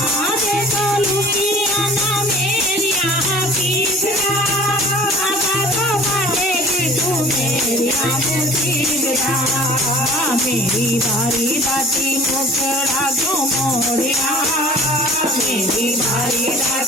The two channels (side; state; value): both; normal; correlation 0.46